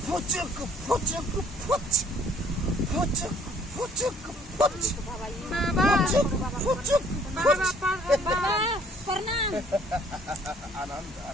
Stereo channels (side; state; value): both; normal; correlation 0.59